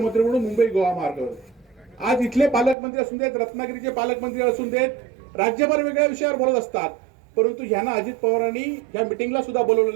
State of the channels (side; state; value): left; drops out; at 2.8 s